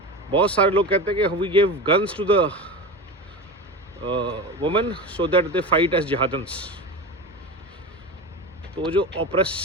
बहुत सारे लोग कहते हैं कि we give guns to the women so that they fight as jihadans. तो जो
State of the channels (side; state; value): both; normal; correlation 0.26